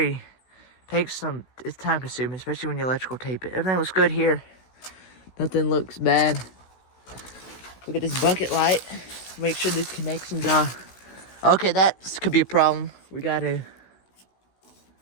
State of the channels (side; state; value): right; late; 16 ms